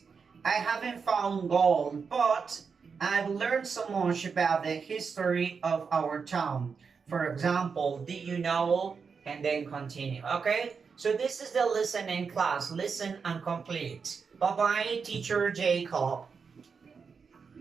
I haven't found gold, but I've learned so much about the history of our town. For example, did you know? And then continue. Okay? So this is the listening class. Listen and complete. Bye bye, teacher Jacob.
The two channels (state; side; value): quieter; left; 5.6 dB